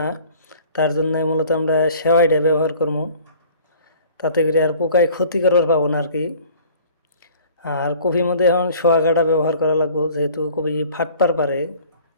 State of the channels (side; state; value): both; inverted; correlation -0.50